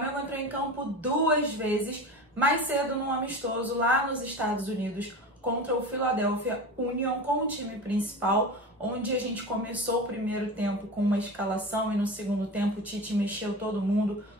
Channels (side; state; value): both; normal; correlation 0.30